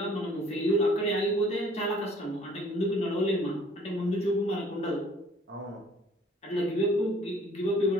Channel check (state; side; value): normal; both; correlation 0.55